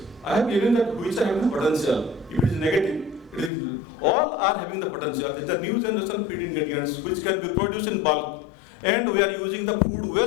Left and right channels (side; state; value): right; drops out; at 3.5 s